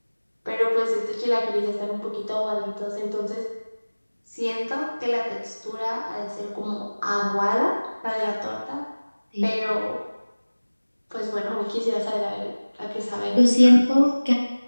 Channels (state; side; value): inverted; both; correlation -1.00